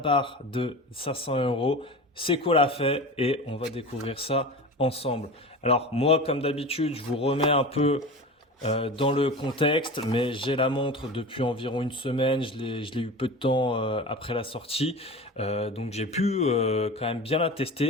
de 500 euros. Seiko l'a fait et on va découvrir ça ensemble. Alors moi, comme d'habitude, je vous remets un peu dans le contexte, mais j'ai la montre depuis environ une semaine. Je l'ai eu peu de temps après la sortie, donc j'ai pu quand même bien la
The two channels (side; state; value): both; normal; correlation 0.31